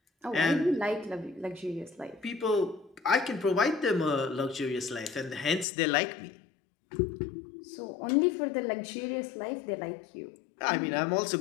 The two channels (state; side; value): drops out; right; at 5.7 s